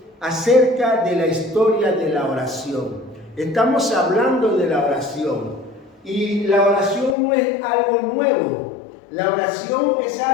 acerca de la historia de la oración. Estamos hablando de la oración y la oración no es algo nuevo. La oración es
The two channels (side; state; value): right; drops out; at 7.2 s